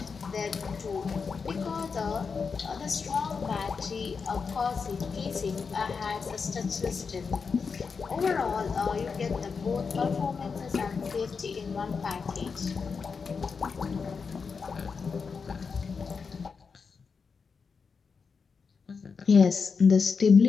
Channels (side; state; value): right; quieter; 5.4 dB